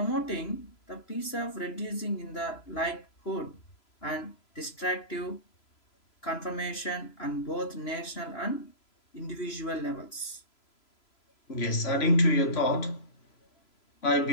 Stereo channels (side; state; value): right; late; 3.0 ms